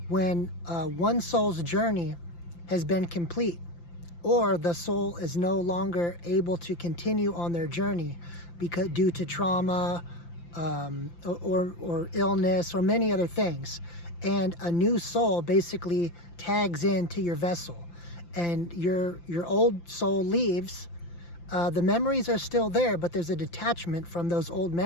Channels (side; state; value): right; late; 5.8 ms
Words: when one soul's journey has been complete, or the soul is no longer able to continue on their journey because due to trauma or illness or many other things, and a new soul basically tags into your vessel, and your old soul leaves. The memories are still there, but there's a detachment from those old